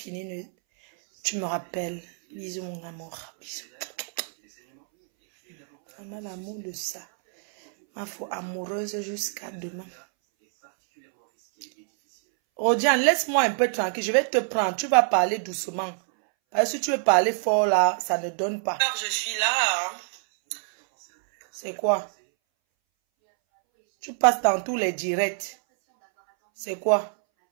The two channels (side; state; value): left; silent; 61 dB below the other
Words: tu me rappelles. Bisous mon amour, bisous. On a l'amour de ça. Ma foi amoureuse jusqu'à demain. Rodiane, laisse-moi un peu tranquille, je vais te prendre. Tu vas parler doucement. Parce que si tu veux parler fort là, ça ne donne pas. Je suis là. C'est quoi? Tu passes dans tous les directs. C'est quoi?